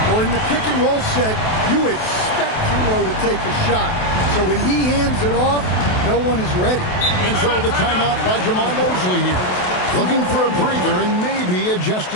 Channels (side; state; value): right; late; 28 ms